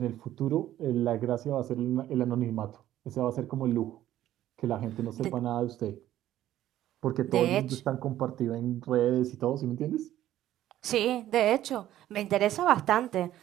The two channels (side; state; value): left; quieter; 13.1 dB